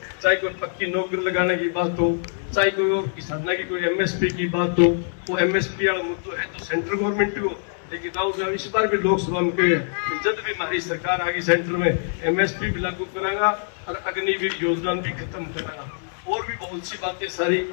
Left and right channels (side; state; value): right; silent; 63 dB below the other